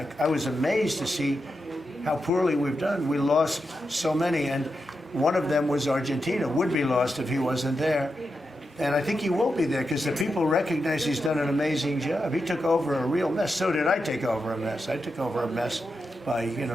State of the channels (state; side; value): normal; both; correlation 0.88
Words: was amazed to see how poorly we've done. We lost so many, and one of them was Argentina, would be lost if he wasn't there. And I think he will be there because the people recognize he's done an amazing job. He took over a real mess. So did I take over a mess. I took over a mess by,